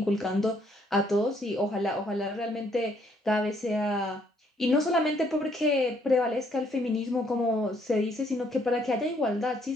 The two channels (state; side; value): normal; both; correlation 0.68